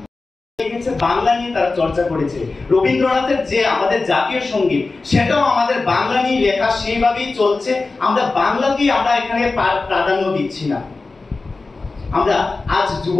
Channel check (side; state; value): right; quieter; 3.7 dB